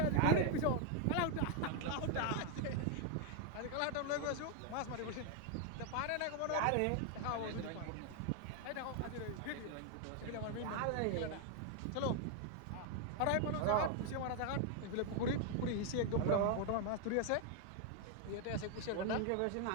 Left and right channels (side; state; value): both; different; correlation 0.00